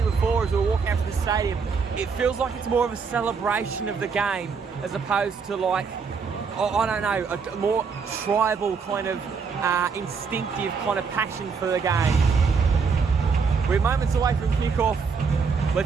before, as we were walking out from the stadium, it feels like it's more of a celebration of the game as opposed to like, I don't know, a more tribal kind of instinctive kind of passion for the game. We're moments away from kickoff.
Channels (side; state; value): left; quieter; 5.5 dB